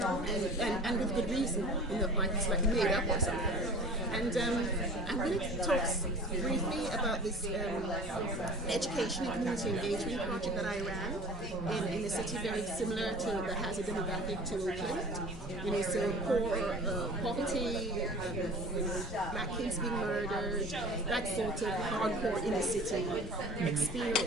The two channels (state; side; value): normal; both; correlation 0.42